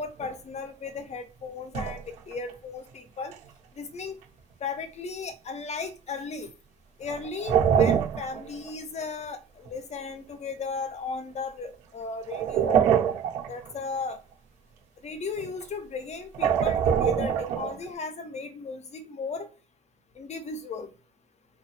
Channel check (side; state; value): left; quieter; 4.6 dB